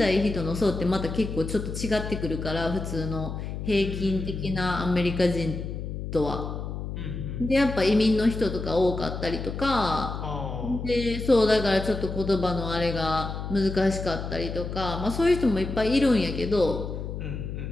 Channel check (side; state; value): left; noise; hum, 6 dB below the sound